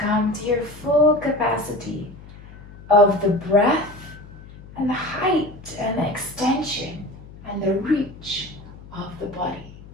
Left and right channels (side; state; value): left; noise; hum, 18 dB below the sound